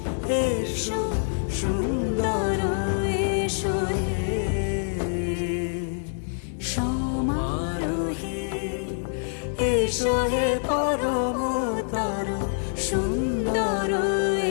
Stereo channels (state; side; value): silent; right; digital silence